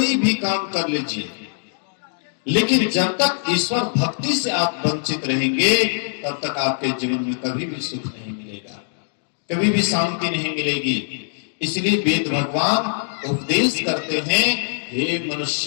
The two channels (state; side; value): silent; right; digital silence